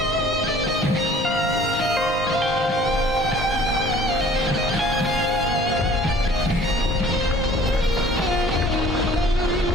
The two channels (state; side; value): normal; both; correlation 0.52